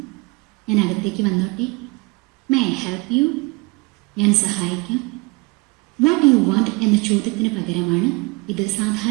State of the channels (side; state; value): left; quieter; 26.6 dB